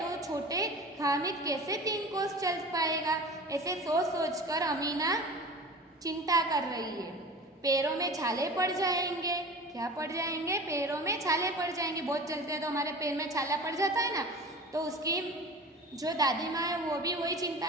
छोटे हामिद कैसे 3 कोस चल पाएगा? ऐसे सोच सोच कर अमीना चिंता कर रही है। पैरों में छाले पड़ जाएंगे। क्या पड़ जाएंगे? पैरों में छाले पड़ जाएंगे। बहुत चलते हैं तो हमारे पैर में छाला पड़ जाता है ना, तो उसकी जो दादी माँ है वो भी वही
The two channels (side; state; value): both; normal; correlation 0.37